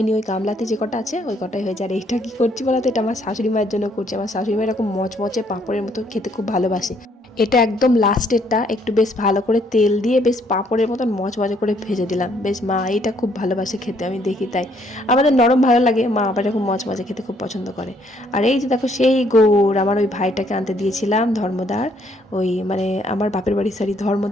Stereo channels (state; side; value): normal; both; correlation 0.67